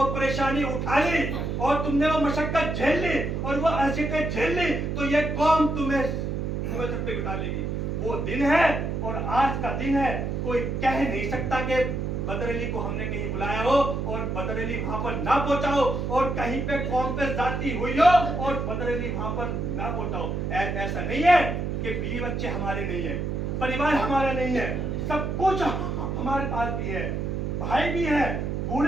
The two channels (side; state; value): right; noise; hum, 2 dB below the sound